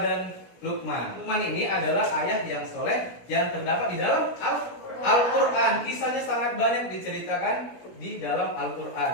Luqman. Luqman ini adalah ayah yang soleh yang terdapat di dalam Al-Quran. Kisahnya sangat banyak diceritakan di dalam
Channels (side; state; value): right; late; 16 ms